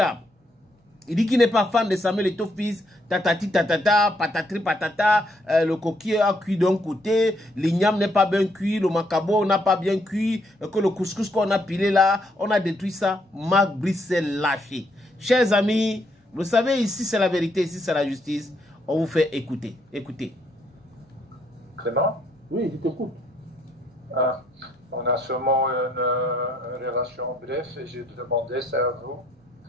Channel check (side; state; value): both; normal; correlation 0.72